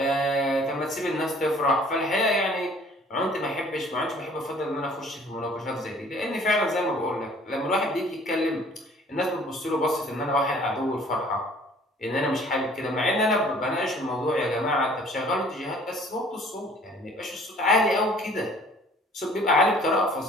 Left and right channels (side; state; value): both; normal; correlation 0.54